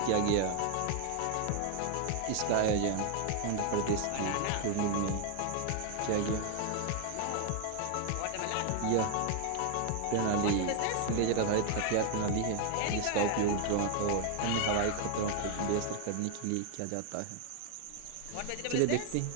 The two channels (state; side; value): different; both; correlation 0.00